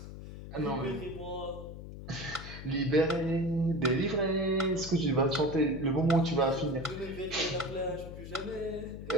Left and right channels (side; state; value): left; noise; hum, 11 dB below the sound